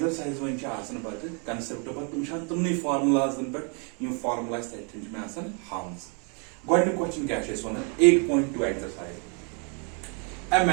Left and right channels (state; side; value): quieter; left; 37.3 dB